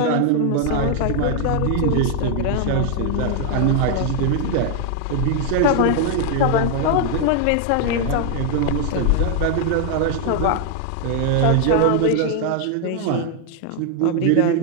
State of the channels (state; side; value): different; both; correlation 0.00